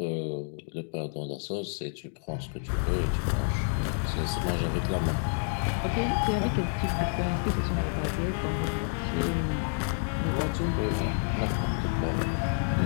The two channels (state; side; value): silent; right; 59 dB below the other